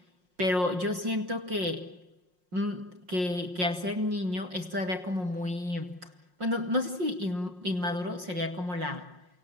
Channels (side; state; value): left; late; 5.5 ms